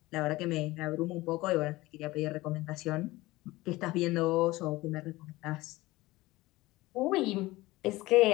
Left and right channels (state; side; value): quieter; right; 19.5 dB